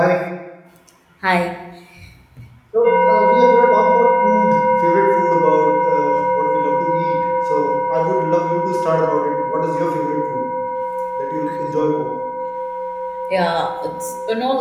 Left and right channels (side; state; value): both; identical; correlation 1.00